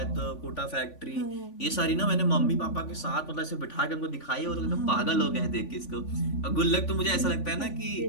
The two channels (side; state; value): right; late; 3.5 ms